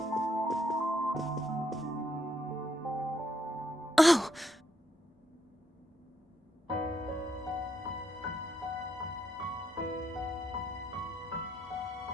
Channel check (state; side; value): normal; both; correlation 0.76